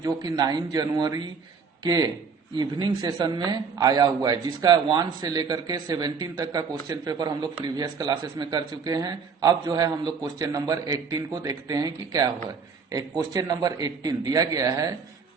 जो कि 9 जनवरी के इवनिंग सेशन में आया हुआ है, जिसका 1 से लेकर के 17 तक का क्वेश्चन पेपर हम लोग प्रीवियस क्लासेस में कर चुके हैं। अब जो है हम लोग क्वेश्चन नंबर 18 को देखते हैं कि क्या हुआ है। एक क्वेश्चन नंबर 18 दिया गया है,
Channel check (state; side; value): quieter; left; 5.5 dB